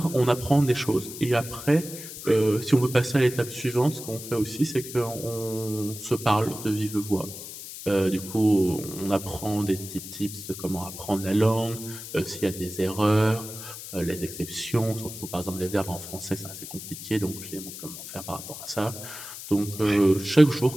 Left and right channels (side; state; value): left; noise; hiss, 11 dB below the sound